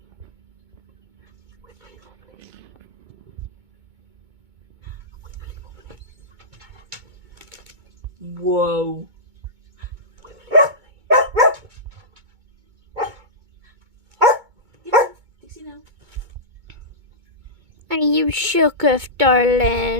Whoa. Dixie now. Are you shooketh,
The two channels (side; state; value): left; late; 2.2 ms